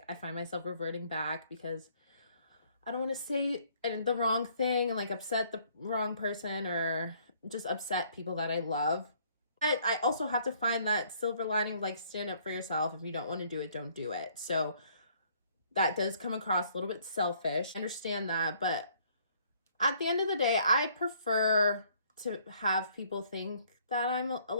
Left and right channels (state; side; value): inverted; both; correlation -0.63